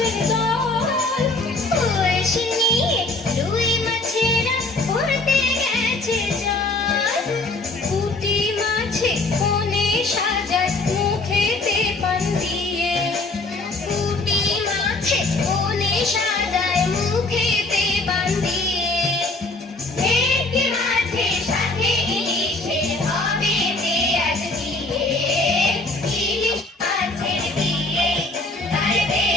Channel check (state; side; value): quieter; right; 3.1 dB